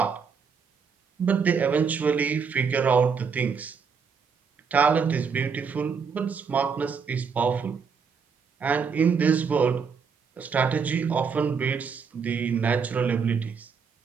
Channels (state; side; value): quieter; left; 5.9 dB